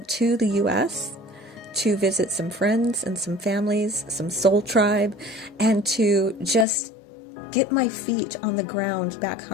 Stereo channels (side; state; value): right; drops out; at 6.7 s